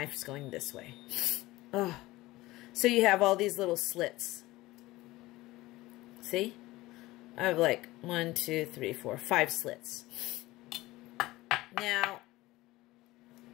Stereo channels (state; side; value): quieter; right; 18.7 dB